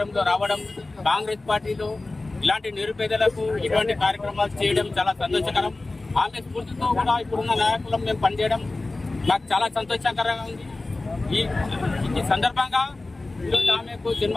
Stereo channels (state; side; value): quieter; right; 3.1 dB